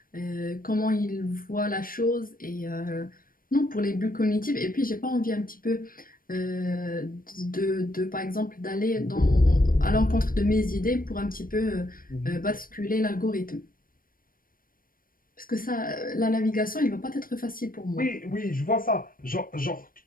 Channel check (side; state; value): right; late; 0.41 ms